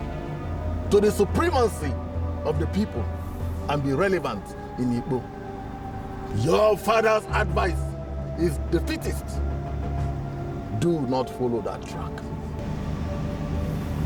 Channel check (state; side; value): identical; both; correlation 1.00